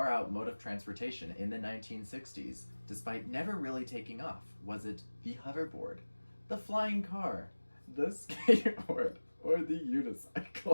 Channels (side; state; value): both; inverted; correlation -1.00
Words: mode of transportation in the 1960s, despite never really taking off? Was it the hoverboard, the flying car, the skateboard, or the